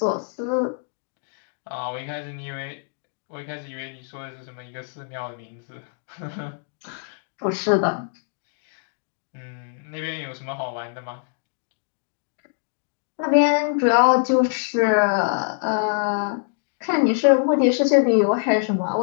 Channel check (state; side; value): silent; right; digital silence